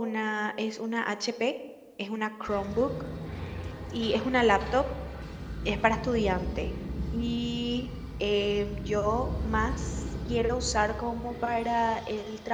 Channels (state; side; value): identical; both; correlation 1.00